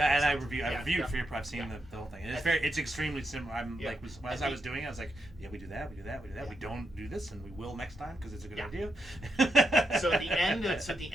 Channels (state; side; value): normal; both; correlation 0.83